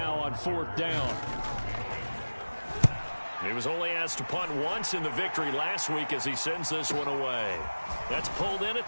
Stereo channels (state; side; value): inverted; both; correlation -1.00